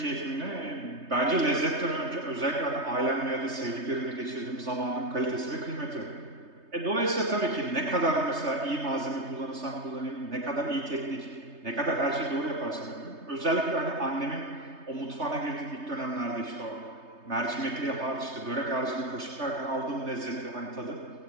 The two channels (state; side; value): late; left; 3.3 ms